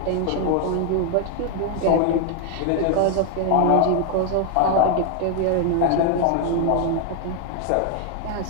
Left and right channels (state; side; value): different; both; correlation 0.00